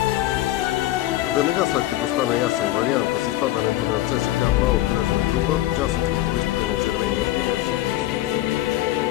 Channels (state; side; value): quieter; right; 15.2 dB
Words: Веднага след като стана ясен вариант с изпадането на ЦСКА в по-кръжна група, част от футболистите на червения отбор